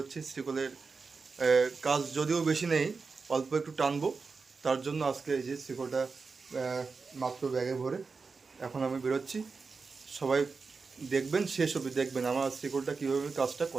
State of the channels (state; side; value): quieter; left; 4.6 dB